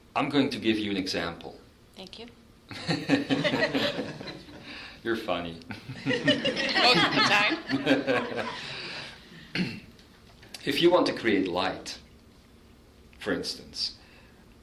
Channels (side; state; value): both; identical; correlation 1.00